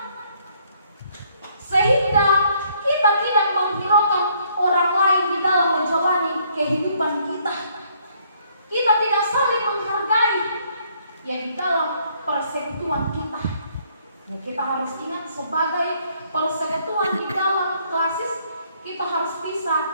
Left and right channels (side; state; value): both; inverted; correlation -0.66